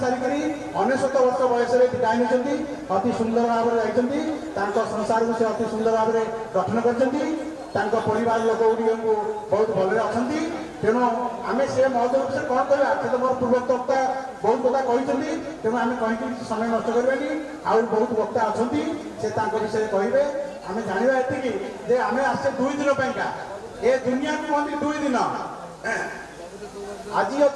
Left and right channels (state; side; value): identical; both; correlation 1.00